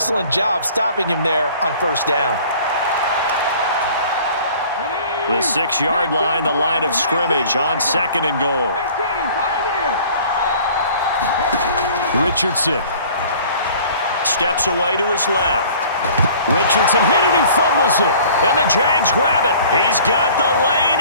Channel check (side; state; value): both; inverted; correlation -0.49